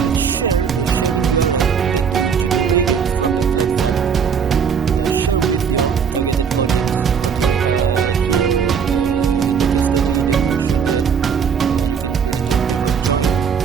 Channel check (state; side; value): quieter; left; 6.8 dB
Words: share the sharing URL that you generated from the platform, share with your targeted audience. Okay, here in the case study they mentioned that you can create a topic or join